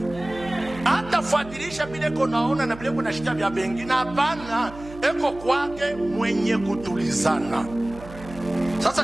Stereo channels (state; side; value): noise; right; hum, 16 dB below the sound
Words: Hata fuatilisha bile konaona na bile kuna shida vya bengine hapana. Eko kwake mwenye kutulizana. Sasa